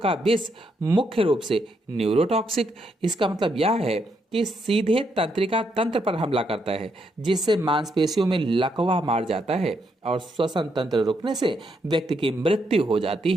विष मुख्य रूप से न्यूरोटॉक्सिक, इसका मतलब यह है कि सीधे तंत्रिका तंत्र पर हमला करता है, जिससे मांसपेशियों में लकवा मार जाता है और श्वसन तंत्र रुकने से व्यक्ति की मृत्यु हो जाती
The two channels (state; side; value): normal; both; correlation 0.77